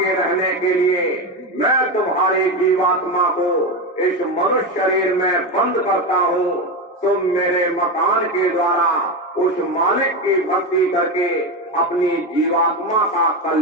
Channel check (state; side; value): normal; both; correlation 0.16